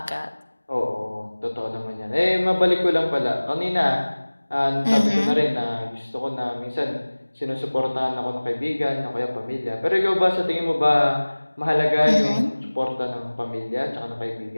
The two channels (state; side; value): inverted; both; correlation -1.00